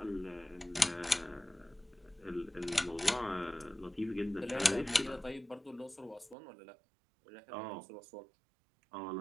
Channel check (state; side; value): drops out; left; at 6.4 s